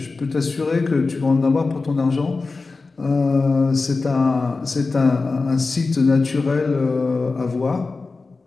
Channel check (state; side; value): quieter; right; 3.9 dB